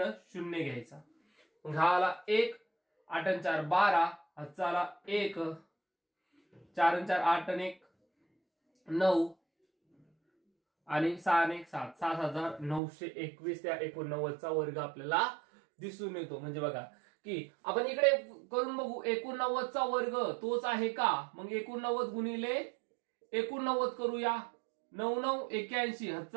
0 घ्यायचा. मग हा आला 1, 8 आणि 4 12, हाचा आला 1, 4 आणि 4 8 आणि 1 9 आणि 6 आणि 1 7, 7921 त्या 89चा वर्ग आपल्याला दिसून येतो. म्हणजे बघा की आपण इकडे करून बघू 89चा वर्ग तोच आहे का. मग 89 गुणिले 89 करूया. 9 9 81,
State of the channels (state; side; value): drops out; left; at 12.8 s